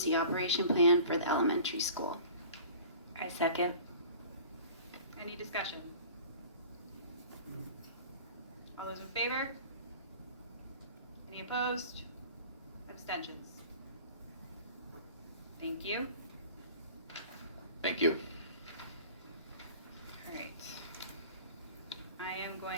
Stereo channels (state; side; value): inverted; both; correlation -0.43